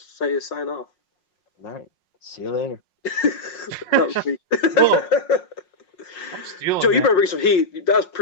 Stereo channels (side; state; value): right; late; 5.5 ms